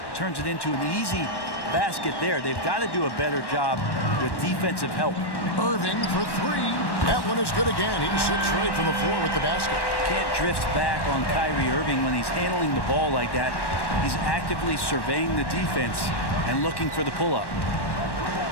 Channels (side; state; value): right; late; 1.1 ms